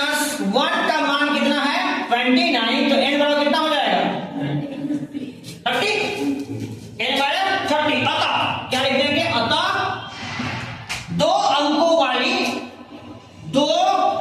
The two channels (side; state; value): both; identical; correlation 1.00